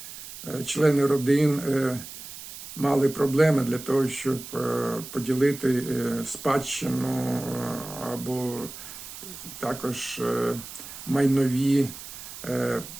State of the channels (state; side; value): noise; right; hiss, 13 dB below the sound